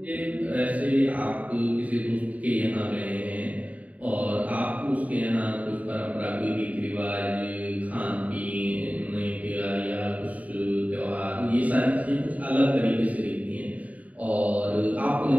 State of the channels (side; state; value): left; late; 0.070 ms